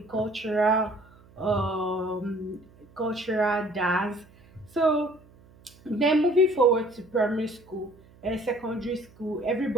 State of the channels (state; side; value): noise; right; hum, 26 dB below the sound